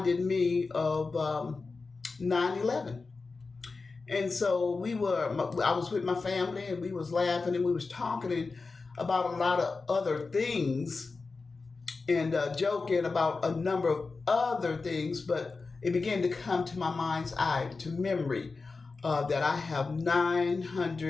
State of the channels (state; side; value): quieter; right; 4.1 dB